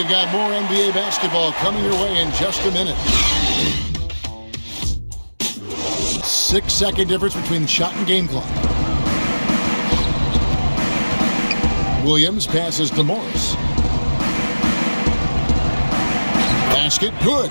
got more NBA basketball coming your way in just a minute. 6-second difference between shot and game clock. Williams passes to Morris. Basket good.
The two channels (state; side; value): inverted; both; correlation -1.00